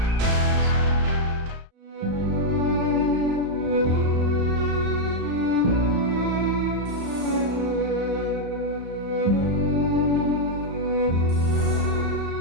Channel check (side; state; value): left; late; 35 ms